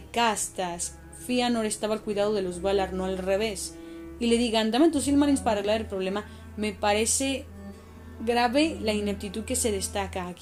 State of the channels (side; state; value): both; identical; correlation 1.00